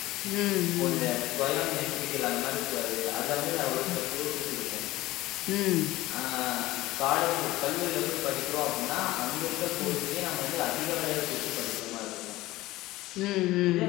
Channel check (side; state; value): right; quieter; 17.7 dB